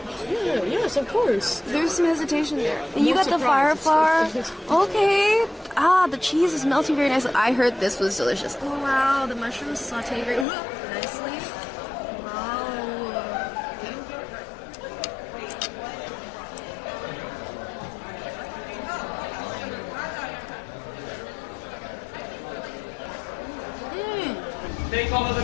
Yeah, yes, of course. There's some hesitation there. And you No got the fire surprise. flower. Okay. Ah, the cheese is melting very nicely. I heard this was delicious. Oh wow, the mushrooms saute very nicely. Wow. Take all of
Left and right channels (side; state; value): right; drops out; at 10.5 s